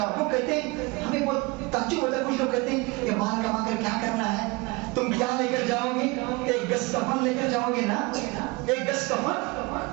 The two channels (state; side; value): quieter; left; 25.2 dB